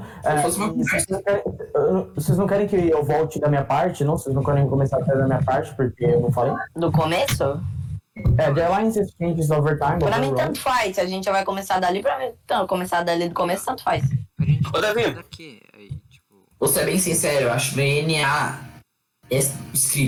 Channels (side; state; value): both; identical; correlation 1.00